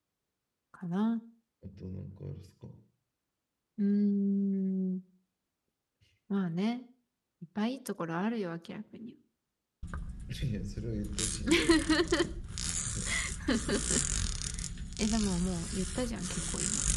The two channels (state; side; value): identical; both; correlation 1.00